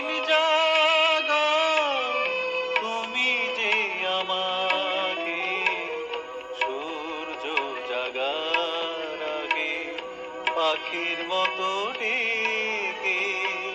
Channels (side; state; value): both; identical; correlation 1.00